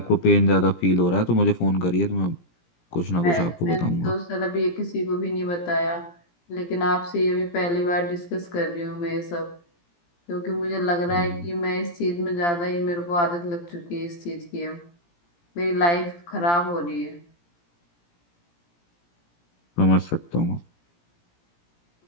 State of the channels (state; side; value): late; right; 17 ms